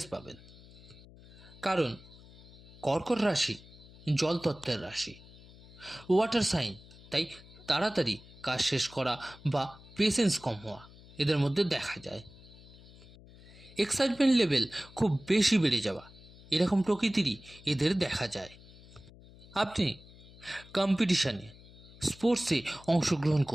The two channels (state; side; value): noise; left; hum, 21 dB below the sound